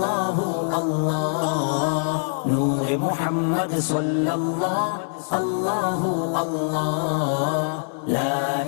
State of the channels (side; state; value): right; silent; 63 dB below the other